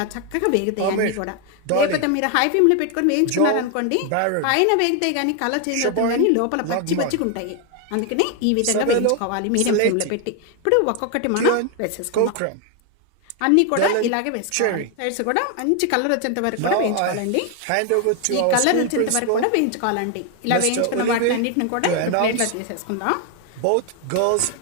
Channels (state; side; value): different; both; correlation 0.01